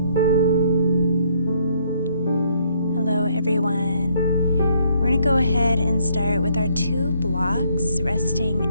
Hello everyone. We're going to go ahead and start with our two blocks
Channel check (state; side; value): inverted; both; correlation -0.68